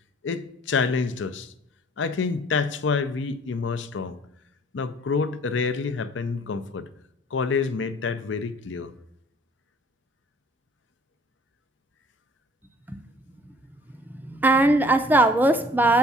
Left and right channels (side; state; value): both; normal; correlation 0.53